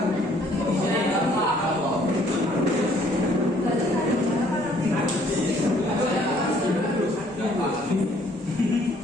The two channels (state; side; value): normal; both; correlation 0.62